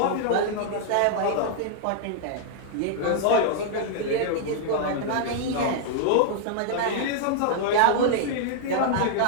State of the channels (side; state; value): both; different; correlation -0.01